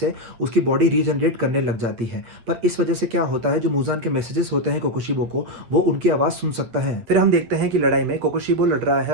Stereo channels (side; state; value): left; late; 8.6 ms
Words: उसकी बॉडी रीजनरेट करने लग जाती है। पर इस वजह से क्या होता है, जो मूजान के मैसेजेस होते हैं कोकोशिबो को, वो उनकी आवाज़ सुन सकता है। फिर हम देखते हैं कि लड़ाई में कोकोशिबो लड़ रहा है